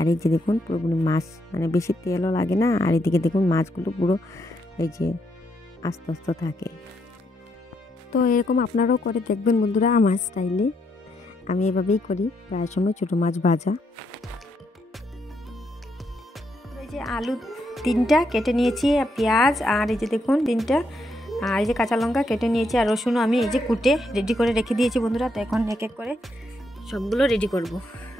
এই যে দেখুন পুরোপুরি মাছ, মানে বেশি তেলও লাগে না। আর এদিকে দেখুন মাছগুলো পুরো এই যে আস্তে আস্তে থাকে। তো এরকম আপনারাও করে দেখবেন বন্ধুরা আমার স্টাইলে। আমি এভাবেই করি প্রায় সময় ছোটো মাছ ভাজা। এই যে আলু 3টা কেটে নিয়েছি, পেঁয়াজ, আর এই যে দেখুন 3টা, আর এই যে কাঁচা লঙ্কা কেটে নিয়েছি, আর রসুনও আমি এই যে কুটে রেডি করে রেখে দিয়েছি বন্ধুরা। তো এখন এক এক করে সবগুলো রেডি করব।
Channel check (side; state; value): both; normal; correlation 0.77